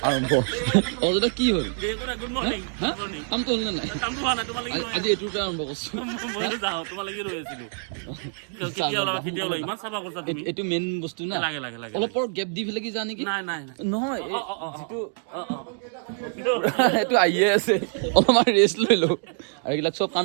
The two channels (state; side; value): silent; left; 57 dB below the other